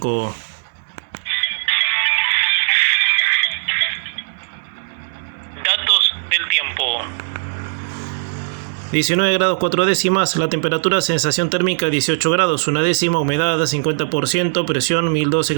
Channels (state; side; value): silent; left; digital silence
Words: Datos del tiempo. 19 grados 4 décimas, la temperatura, sensación térmica 18 grados 1 décima, humedad 50%, presión 1002